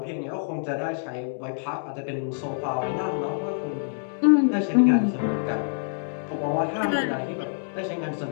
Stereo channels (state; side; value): silent; right; digital silence